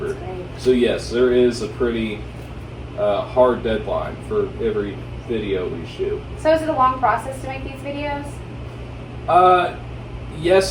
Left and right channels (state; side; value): identical; both; correlation 1.00